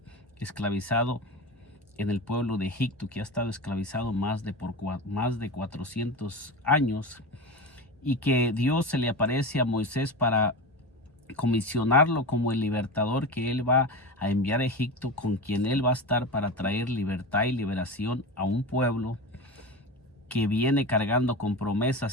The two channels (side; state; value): both; normal; correlation 0.24